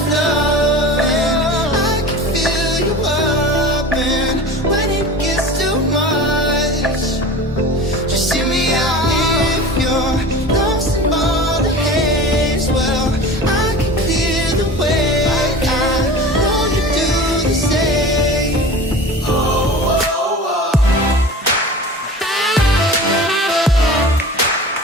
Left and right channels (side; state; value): both; normal; correlation 0.36